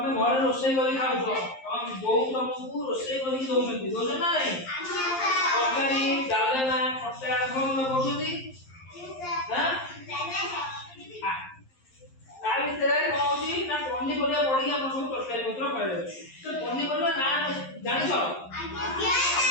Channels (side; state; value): right; late; 11 ms